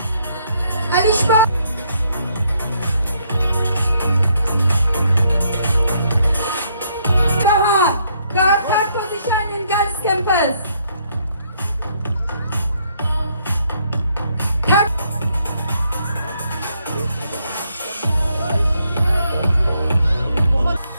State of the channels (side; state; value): both; inverted; correlation -0.71